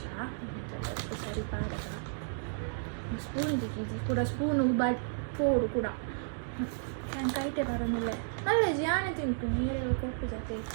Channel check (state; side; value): silent; left; digital silence